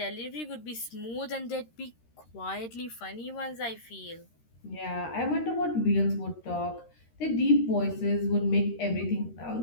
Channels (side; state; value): right; late; 13 ms